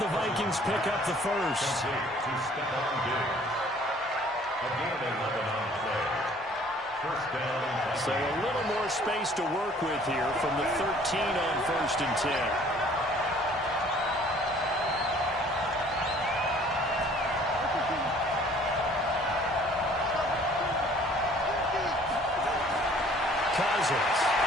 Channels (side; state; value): both; normal; correlation 0.55